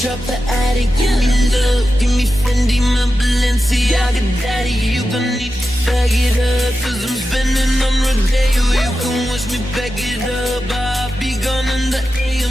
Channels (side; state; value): both; normal; correlation 0.91